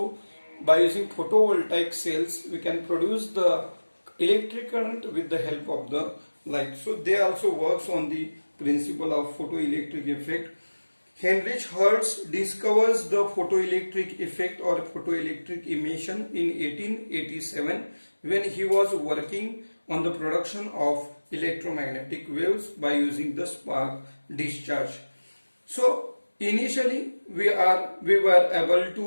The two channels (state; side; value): inverted; both; correlation -1.00